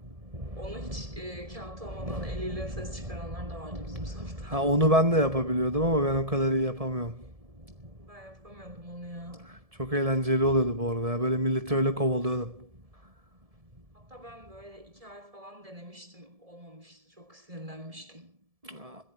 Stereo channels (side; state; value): left; late; 1.7 ms